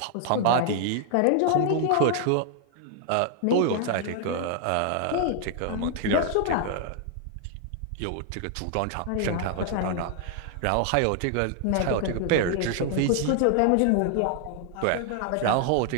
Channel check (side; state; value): both; different; correlation 0.00